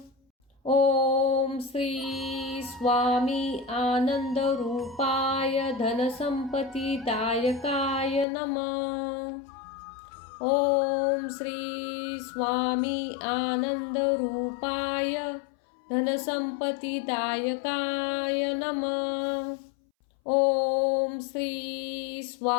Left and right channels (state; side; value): drops out; right; at 8.2 s